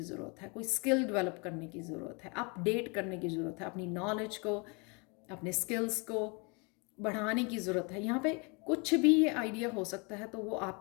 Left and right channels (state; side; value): quieter; right; 31.7 dB